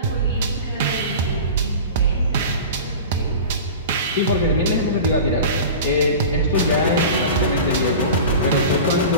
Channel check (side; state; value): both; inverted; correlation -0.35